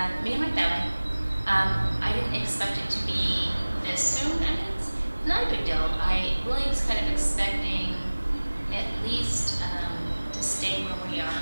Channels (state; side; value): inverted; both; correlation -1.00